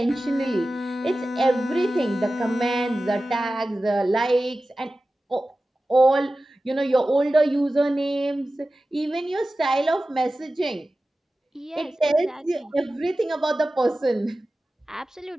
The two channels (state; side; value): normal; both; correlation 0.95